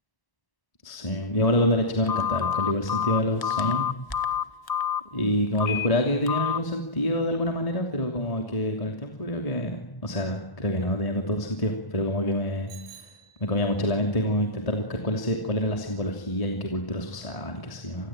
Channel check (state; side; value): late; right; 1.0 ms